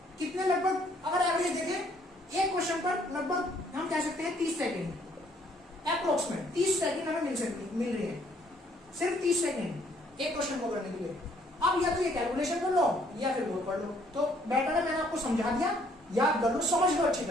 कितने? लगभग अगर एवरेज देखें एक क्वेश्चन पर लगभग हम कह सकते हैं 30 सेकेंड, अप्रोक्सीमेट 30 सेकेंड हमें मिल रही है, सिर्फ 30 सेकेंड एक क्वेश्चन को करने के लिए। अब या तो ये कैलकुलेशन कर लो या फिर वो पढ़ लो, तो बेटर है मैंने आपको समझा दिया, याद कर लो, समझ लो अच्छी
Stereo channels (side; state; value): both; normal; correlation 0.64